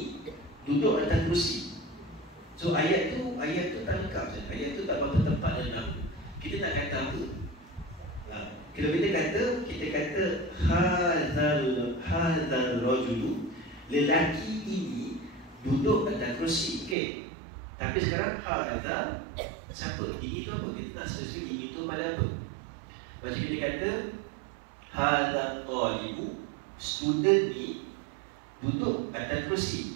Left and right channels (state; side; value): drops out; left; at 16.9 s